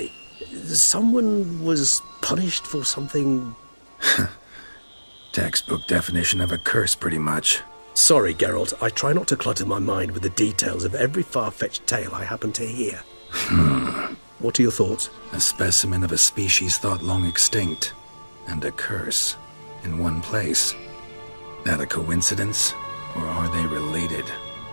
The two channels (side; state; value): both; inverted; correlation -1.00